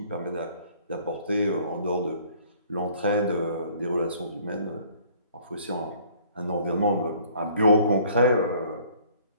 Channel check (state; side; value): inverted; both; correlation -0.57